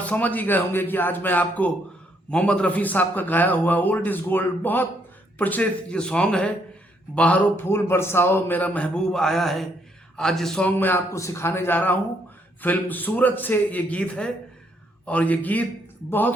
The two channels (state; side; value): normal; both; correlation 0.72